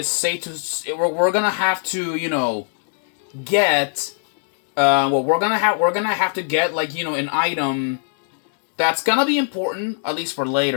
safe to we're gonna have to get. Well, we're gonna have to get like an item that's gonna be important, at least for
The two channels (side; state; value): right; silent; 65 dB below the other